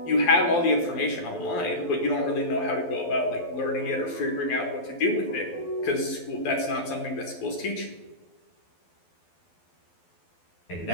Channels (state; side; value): late; right; 12 ms